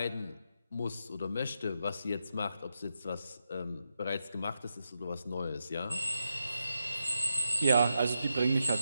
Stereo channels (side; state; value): both; inverted; correlation -0.85